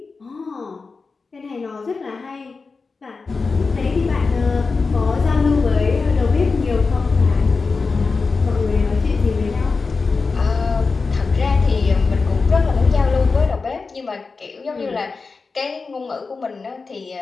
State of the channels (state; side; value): quieter; right; 4.4 dB